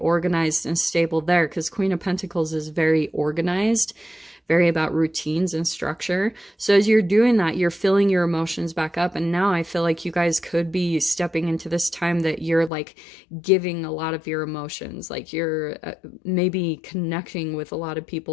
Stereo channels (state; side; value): drops out; right; at 12.7 s